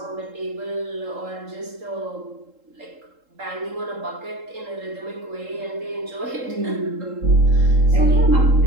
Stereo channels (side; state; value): left; late; 3.7 ms